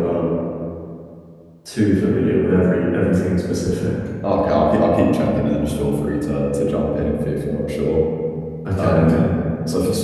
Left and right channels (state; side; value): identical; both; correlation 1.00